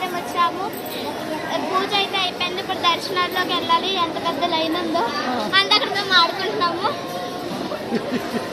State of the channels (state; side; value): identical; both; correlation 1.00